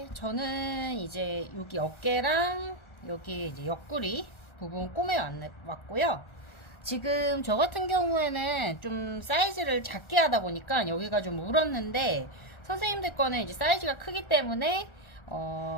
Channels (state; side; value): late; right; 1.4 ms